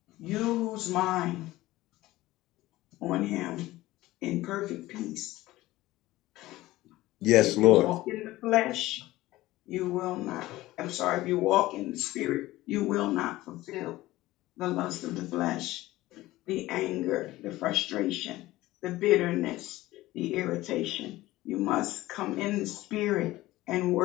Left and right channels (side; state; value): right; quieter; 17.3 dB